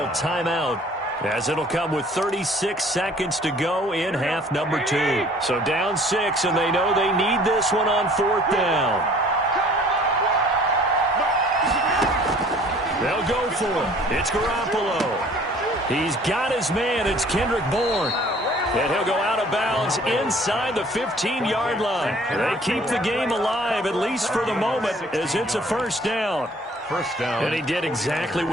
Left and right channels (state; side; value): normal; both; correlation 0.54